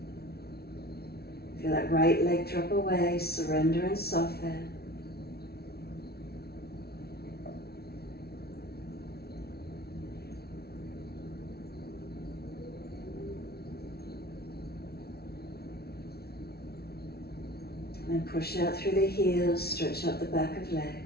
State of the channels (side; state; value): right; late; 0.45 ms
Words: Feel that right leg drop away, surrender and soften. And push out through the heels, stretch up the back of legs.